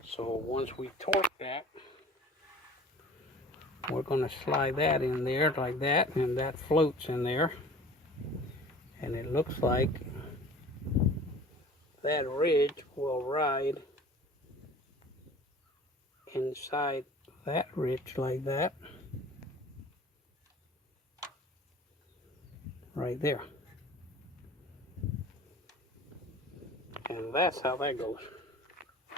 So once we torque that, we're going to slide that in there like that, and that floats in there. And it looks like that ridge will ride inside that ridge like that. Right there. And that's how that goes.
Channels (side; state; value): both; normal; correlation 0.44